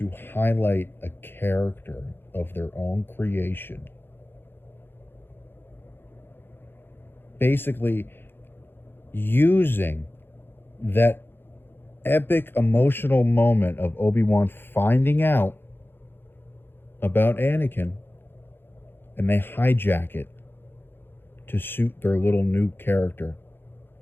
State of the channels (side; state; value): right; late; 0.10 ms